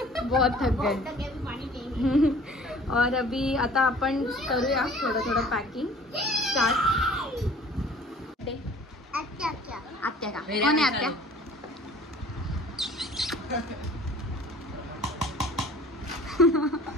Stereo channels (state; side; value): normal; both; correlation 0.49